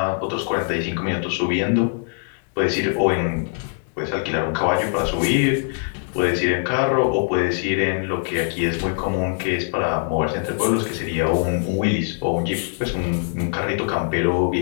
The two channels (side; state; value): right; silent; 57 dB below the other